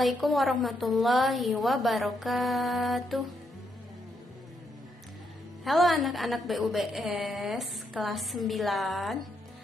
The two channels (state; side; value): normal; both; correlation 0.78